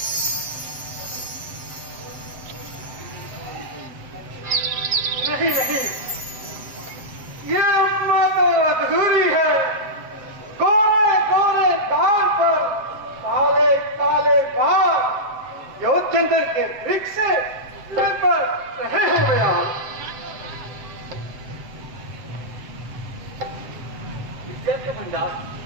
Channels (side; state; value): left; late; 7.9 ms